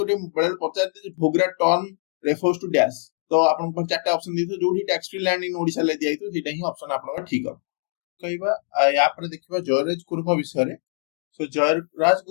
बळे पचारते जे Bhogra turn refers to dash तो आपन को चारटा ऑप्शन दिथो जोडी tax free land in Odisha ले दिया तो सेटा ही ऑप्शन आपन का ठीक हो कहबा या पर देखिबा जयराज गुरु विषय रे सो जयराज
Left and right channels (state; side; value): silent; right; 63 dB below the other